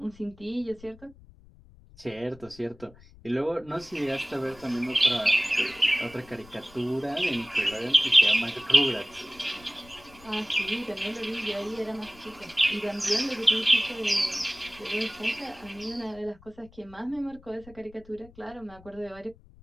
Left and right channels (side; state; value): left; noise; rumble, 23 dB below the sound